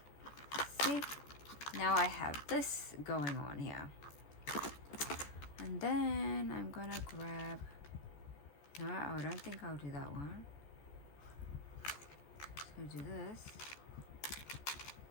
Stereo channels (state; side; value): late; right; 14 ms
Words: See? Now I have this going on here. And then I'm gonna grab, no, I don't think I'll do that one. So do this.